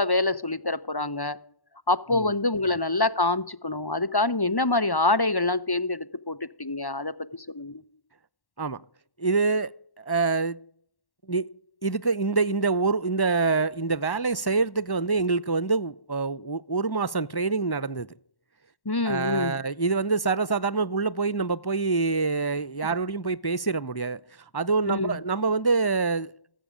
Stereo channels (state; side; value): late; right; 1.1 ms